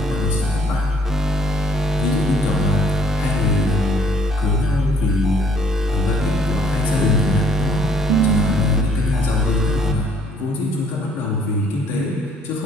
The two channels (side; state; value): both; normal; correlation 0.62